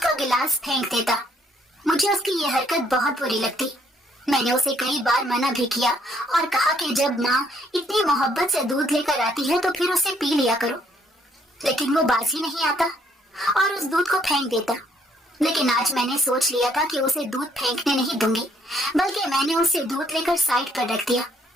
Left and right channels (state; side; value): normal; both; correlation 0.67